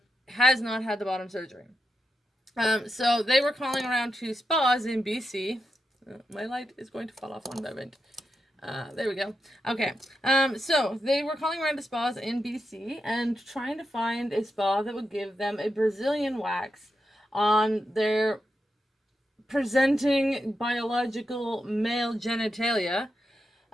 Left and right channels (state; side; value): normal; both; correlation 0.87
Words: has not had the bottom surgery. So they were calling around to spas in BC. My light is going to fall off one moment. There we go. Okay. So they were calling around to spas in BC and trying to find a spa that would give them a Brazilian wax on their presenting biological male genitalia,